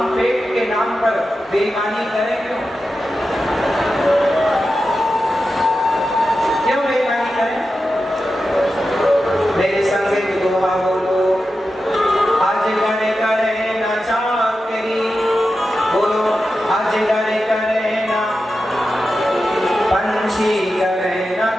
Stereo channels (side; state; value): both; normal; correlation 0.91